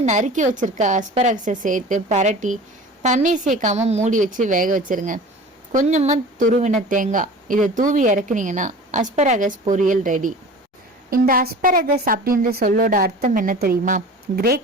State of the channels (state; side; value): normal; both; correlation 0.39